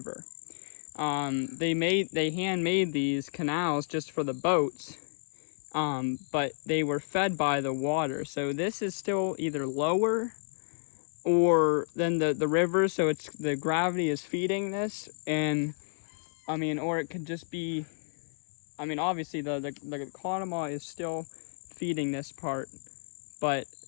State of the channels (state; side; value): silent; right; 57 dB below the other